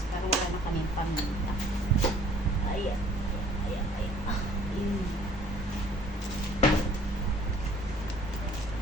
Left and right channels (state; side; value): normal; both; correlation 0.56